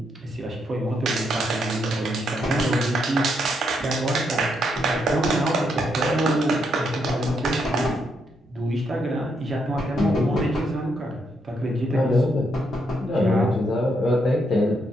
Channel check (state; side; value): normal; both; correlation 0.77